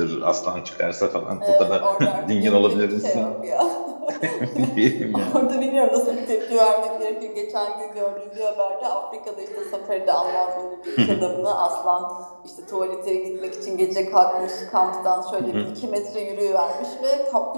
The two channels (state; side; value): inverted; both; correlation -1.00